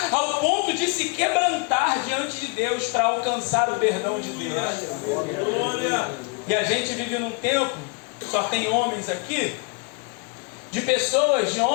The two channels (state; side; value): quieter; right; 30.8 dB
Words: ao ponto de se quebrantar diante de Deus para alcançar o perdão de Deus. E a gente vive num tempo, só tem homens aqui, de pessoas, de